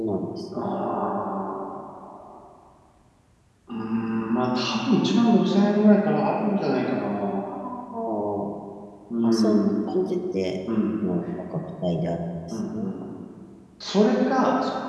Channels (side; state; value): both; identical; correlation 1.00